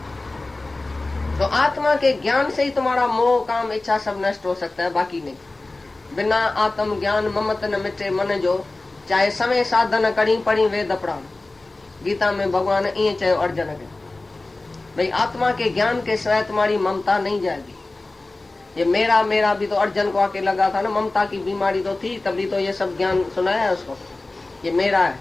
तो आत्मा के ज्ञान से ही तुम्हारा मोह, काम, इच्छा सब नष्ट हो सकता है, बाकी नहीं। बिना आत्म ज्ञान ममत न मिटे मन जो, चाहे समय साधन करी पड़ी वेद अपराध। गीता में भगवान ये चाहे अर्जुन के भाई आत्मा के ज्ञान के सिवाय तुम्हारी ममता नहीं जाएगी। ये मेरा मेरा भी तो अर्जुन को आके लगा था ना, ममता की बीमारी तो थी, तभी तो ये सब ज्ञान सुनाया है उसको, ये मेरा है।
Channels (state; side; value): quieter; right; 3.1 dB